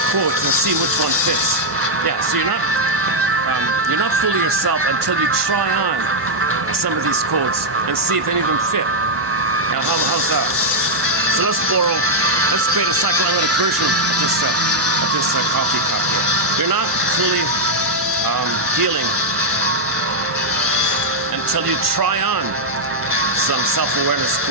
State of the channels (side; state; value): both; normal; correlation -0.02